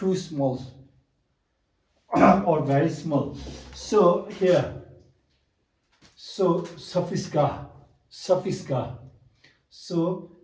small or very small. So here, so suffix ga. So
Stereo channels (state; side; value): identical; both; correlation 1.00